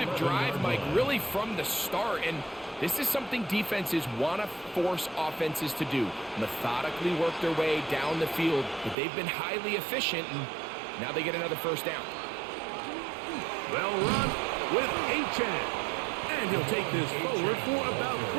drive, Mike, really from the start. And this is something defenses want to force offenses to do. Methodically work their way down the field. But they've been highly efficient, and now they get another first down. Well run with A-Chan. And he'll take this forward for about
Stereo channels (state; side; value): drops out; left; at 9.0 s